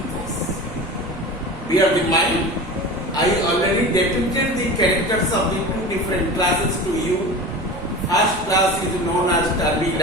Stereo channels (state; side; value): normal; both; correlation 0.32